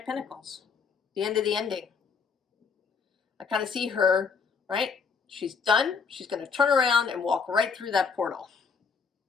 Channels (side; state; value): right; quieter; 5.6 dB